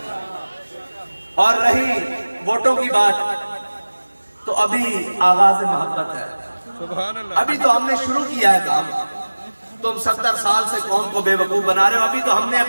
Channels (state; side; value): inverted; both; correlation -1.00